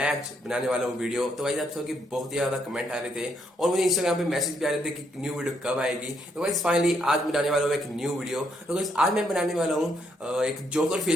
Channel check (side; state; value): both; normal; correlation 0.74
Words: आज बनाने वाला हूँ वीडियो। तो गाइस, आप सबके बहुत ही ज्यादा कमेंट आ रहे थे और मुझे इंस्टाग्राम पे मैसेज भी आ रहे थे कि न्यू वीडियो कब आएगी। तो गाइस फाइनली आज बनाने वाला हूँ एक न्यू वीडियो। तो गाइस आज मैं बनाने वाला हूँ एक जोकर